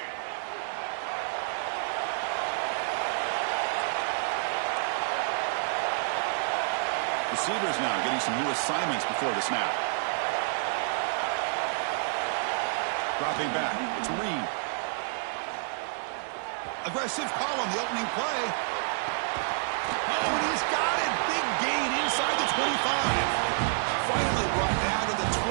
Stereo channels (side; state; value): left; silent; 59 dB below the other